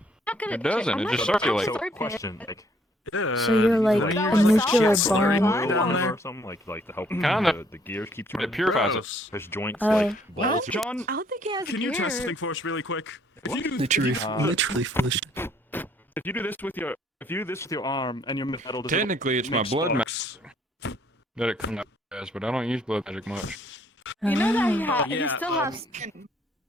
Not gonna It doesn't, I'm it not just gonna circulates. touch So, it. question, like, So you're like Like, a that was nuclear shit slurry bomb. oil down down there. Or something like to help Kinda. the gears keep It turning. purifies it. Gross. His joints Oh. like balls. John, I don't think he has Can you gear. test something for us really quick? If you do, Literally full of shit. if you do this with your arm and your metal, does it Technically, it's my make blood sparks? that it comes out as, but I don't use blood magic much. You know that he, Ah. he Yeah, still has skin.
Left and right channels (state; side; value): normal; both; correlation 0.64